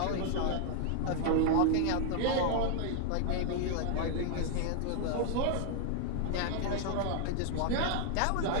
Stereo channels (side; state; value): both; different; correlation 0.00